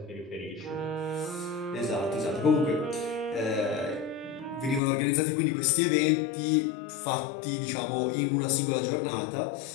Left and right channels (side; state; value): right; drops out; at 4.8 s